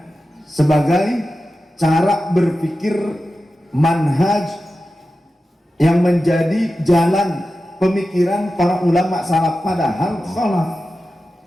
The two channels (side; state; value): both; normal; correlation 0.93